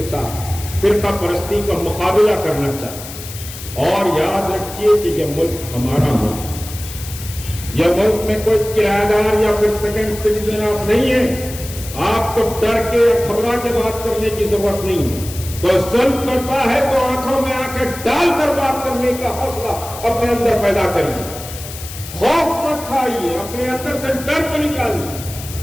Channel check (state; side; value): noise; left; hiss, 12 dB below the sound